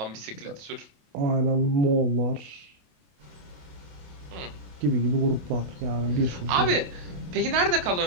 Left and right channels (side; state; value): left; late; 28 ms